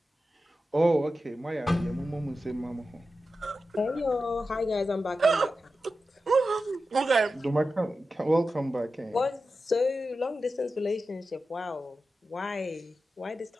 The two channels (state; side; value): normal; both; correlation 0.92